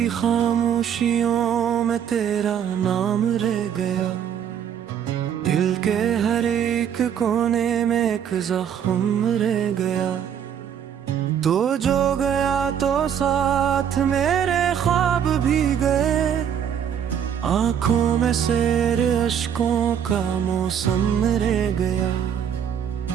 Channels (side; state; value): left; quieter; 8.7 dB